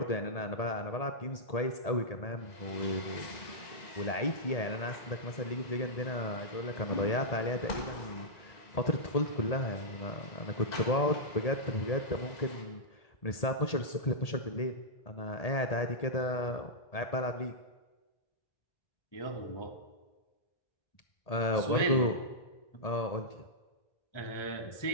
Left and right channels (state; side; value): late; right; 1.8 ms